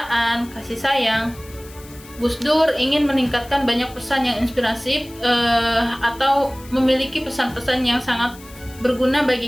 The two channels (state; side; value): noise; left; hiss, 21 dB below the sound